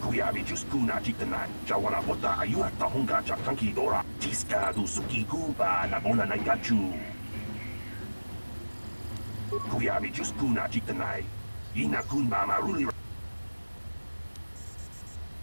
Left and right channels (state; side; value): inverted; both; correlation -1.00